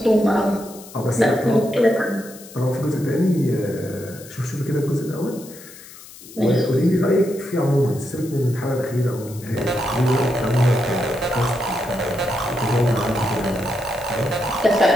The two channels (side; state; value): left; noise; hiss, 18 dB below the sound